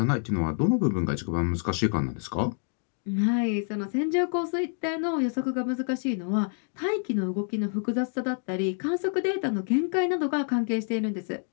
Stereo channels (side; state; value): right; silent; 60 dB below the other